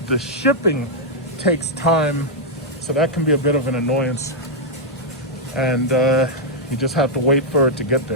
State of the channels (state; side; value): normal; both; correlation -0.06